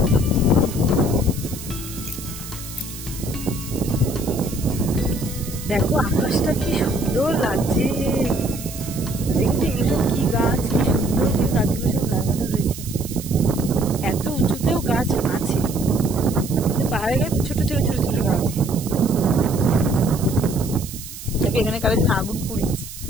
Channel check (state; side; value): noise; right; hiss, 12 dB below the sound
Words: দেখো আকাশটা কি সুন্দর লাগছে, দেখছি এগুলো সব কি গাছ, কি সুন্দর করে গাছগুলো সব লাগানো রয়েছে। এত উঁচুতেও গাছ আছে, কিন্তু পাহাড়ে গাছে ছোট ছোট ছোট ছোট গাছ। এখানে কারো দিন আগুন পুড়িয়েছে।